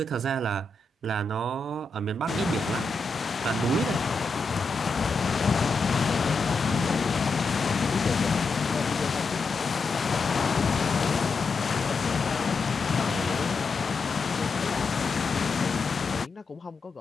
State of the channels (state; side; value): quieter; right; 3.7 dB